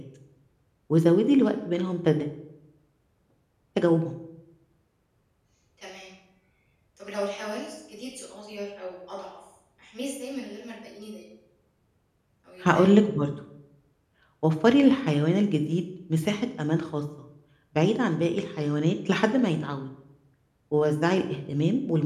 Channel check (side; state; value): both; identical; correlation 1.00